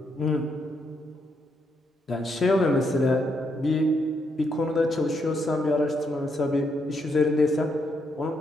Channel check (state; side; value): normal; both; correlation 0.78